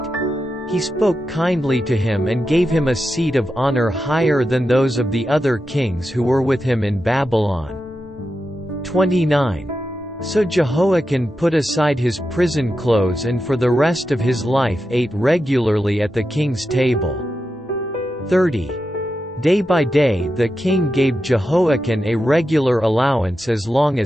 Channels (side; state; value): both; normal; correlation 0.89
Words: He spoke kindly to him and gave him a seat of honor higher than those of the other kings who were with him in Babylon. 29. So Jehoiakim put aside his prison clothes and for the rest of his life ate regularly at the king's table. 30. Day by day the king gave Jehoiakim a regular allowance as long